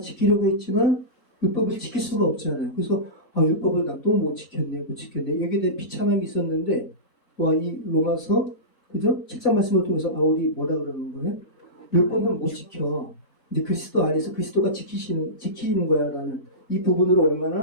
했지만 율법을 지킬 수가 없잖아요. 그래서 율법을 나 또 못 지켰네. 여기에 대해 비참함이 있었는데 이 로마서 그죠? 7장 말씀을 통해서 바울이 뭐라 그러는 거예요? 율법은 못 지켜. 이제 그리스도 안에서 그리스도가 지키는 거야라는 이 부분으로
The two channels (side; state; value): both; normal; correlation -0.19